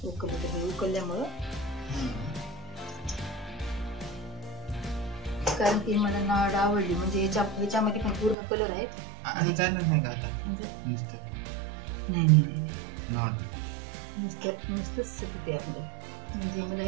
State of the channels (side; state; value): left; drops out; at 8.3 s